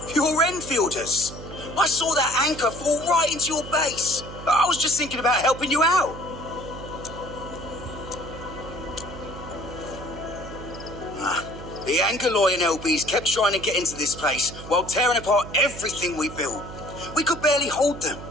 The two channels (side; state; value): right; noise; hum, 12 dB below the sound